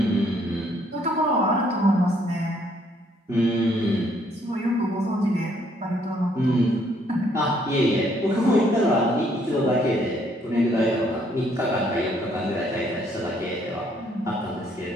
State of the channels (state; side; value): normal; both; correlation 0.67